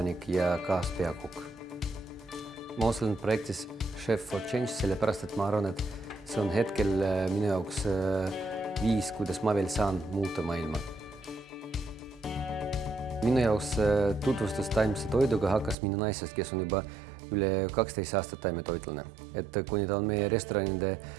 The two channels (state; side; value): drops out; left; at 15.8 s